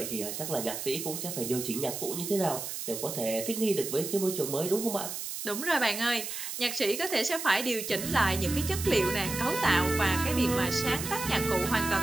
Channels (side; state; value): right; noise; hiss, 6 dB below the sound